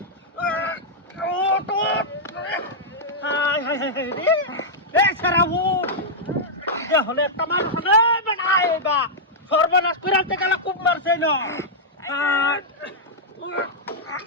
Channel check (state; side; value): normal; both; correlation -0.07